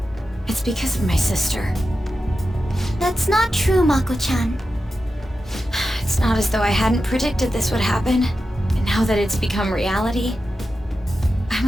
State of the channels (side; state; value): both; normal; correlation 0.91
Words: It's because of my sister. That's not true, Mako-chan. It's not as though I hadn't predicted this would happen. And now that it's become reality,